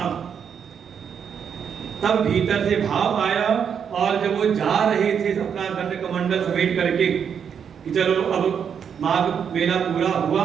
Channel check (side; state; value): left; quieter; 7.5 dB